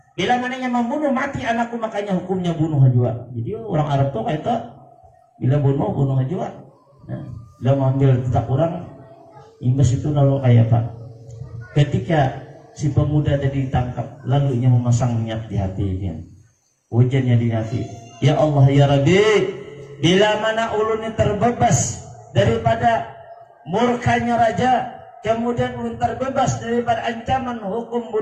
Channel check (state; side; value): identical; both; correlation 1.00